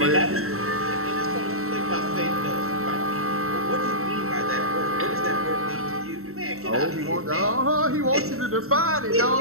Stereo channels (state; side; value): late; left; 0.63 ms